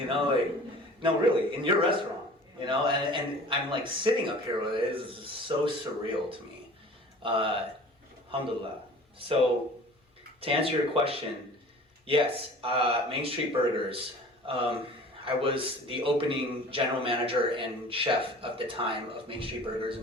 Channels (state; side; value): normal; both; correlation 0.44